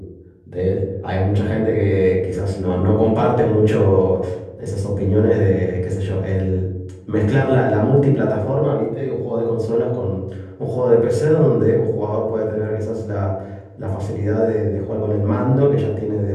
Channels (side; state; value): both; identical; correlation 1.00